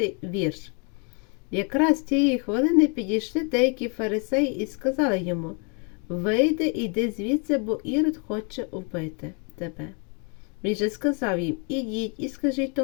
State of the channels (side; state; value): right; quieter; 36.2 dB